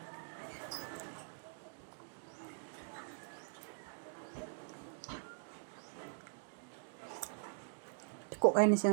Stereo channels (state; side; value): silent; left; digital silence